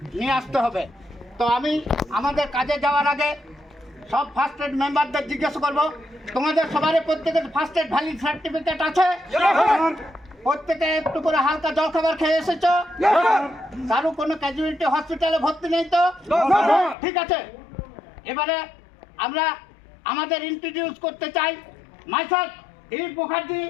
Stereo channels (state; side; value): drops out; right; at 16.9 s